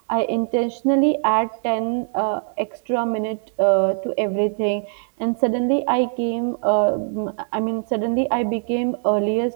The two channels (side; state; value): left; silent; 61 dB below the other